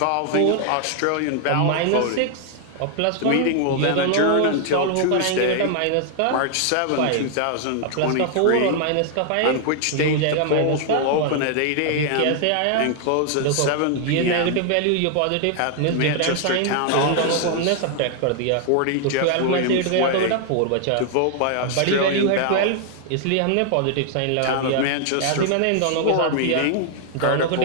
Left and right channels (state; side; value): different; both; correlation 0.00